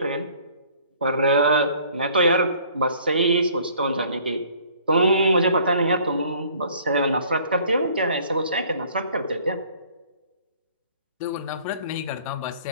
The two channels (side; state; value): both; inverted; correlation -0.56